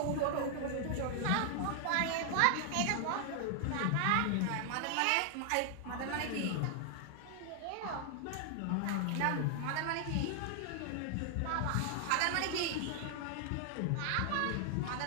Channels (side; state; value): both; different; correlation 0.00